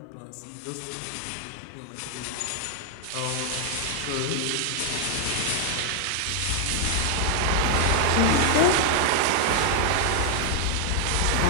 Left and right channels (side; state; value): both; different; correlation 0.00